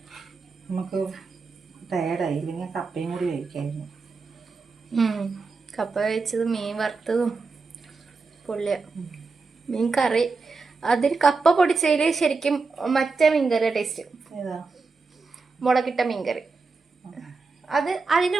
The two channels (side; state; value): left; quieter; 4.3 dB